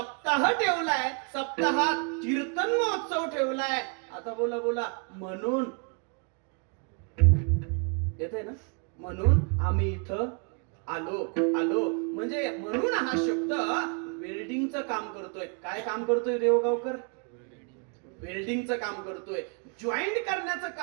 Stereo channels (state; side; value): quieter; left; 37.5 dB